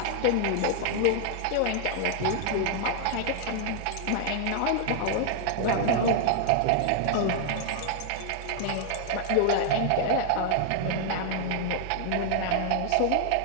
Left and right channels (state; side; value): different; both; correlation 0.00